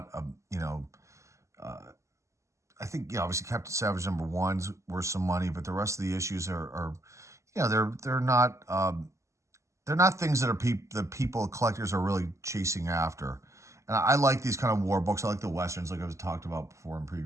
a, I think, obviously Captain Savage #1's worth some money, but the rest of the issues are they're not things that collectors are really chasing after. And I like these kind of war books. I like the Westerns, like I've talked about before in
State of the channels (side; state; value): left; late; 0.14 ms